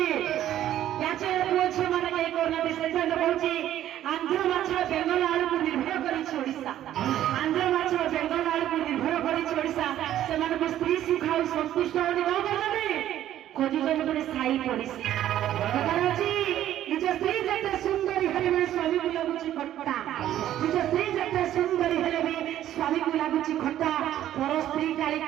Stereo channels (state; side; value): quieter; left; 12.2 dB